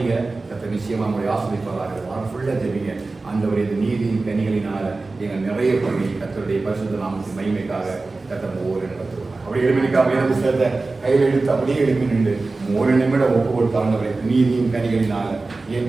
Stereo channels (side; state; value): left; quieter; 3.5 dB